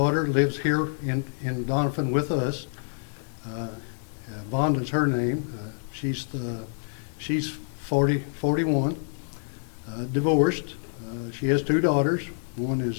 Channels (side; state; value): right; silent; digital silence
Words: who lives here in Donovan with us. Bond is her name. She's 41, divorced. She has 2 daughters. One